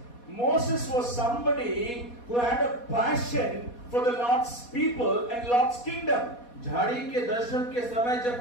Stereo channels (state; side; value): late; right; 4.2 ms